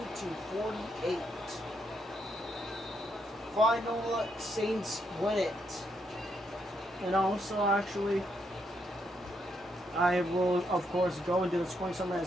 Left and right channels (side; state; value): both; normal; correlation 0.77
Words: Final, Saints win it. And also, actually, I will, of course, go into the scoring summary.